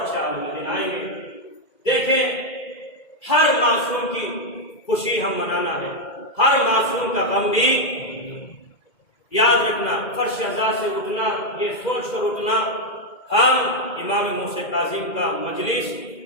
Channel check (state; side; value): late; right; 2.0 ms